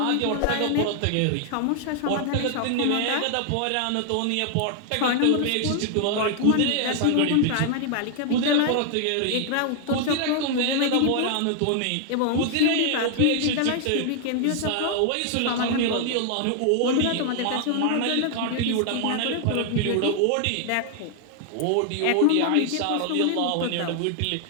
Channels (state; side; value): different; both; correlation 0.00